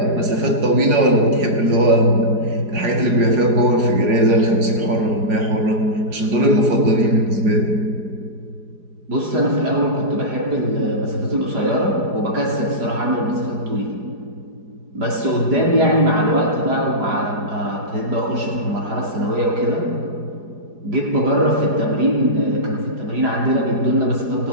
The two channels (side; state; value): left; late; 4.8 ms